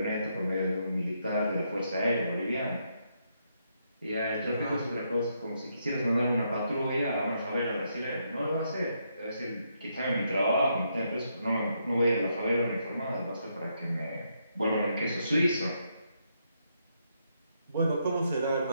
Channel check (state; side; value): inverted; both; correlation -0.78